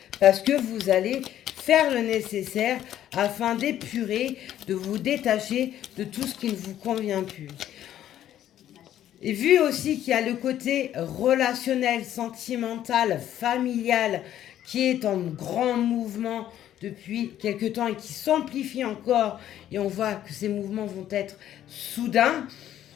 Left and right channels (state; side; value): quieter; right; 11.6 dB